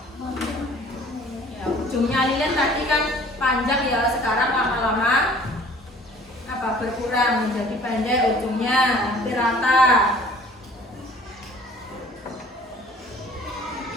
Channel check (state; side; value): normal; both; correlation 0.51